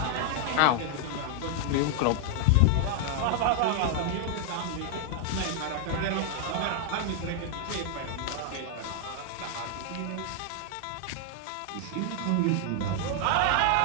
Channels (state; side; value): different; both; correlation 0.00